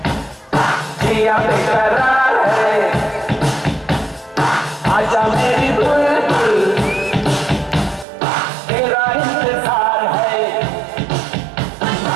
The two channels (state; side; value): drops out; left; at 8.1 s